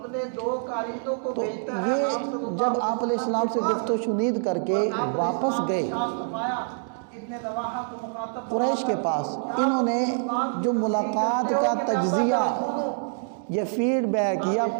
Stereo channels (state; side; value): silent; left; digital silence